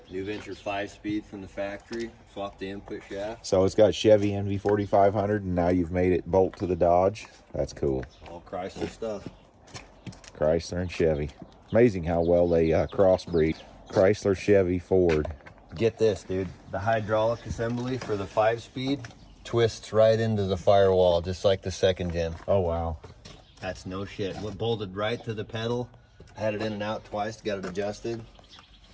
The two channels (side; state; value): both; identical; correlation 1.00